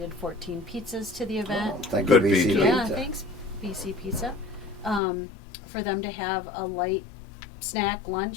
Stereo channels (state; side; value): drops out; right; at 5.0 s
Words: 14 pizzas to the event. Oh, thank Good you, BC pizza. Yeah, Pizza. thanks, BC Pizza. For them to have a light snack